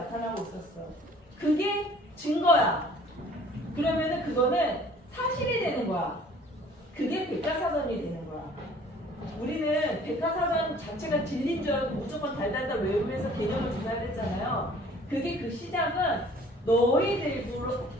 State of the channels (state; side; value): normal; both; correlation 0.53